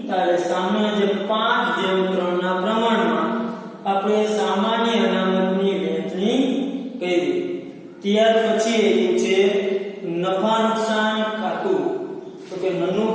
ત્યારે સામાન્ય જે 5:3 ના પ્રમાણમાં આપણે સામાન્ય અનામતની વહેંચણી કરી. ત્યાર પછી છે નફા નુકસાન ખાતું. તો કે નનું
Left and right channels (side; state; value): both; identical; correlation 1.00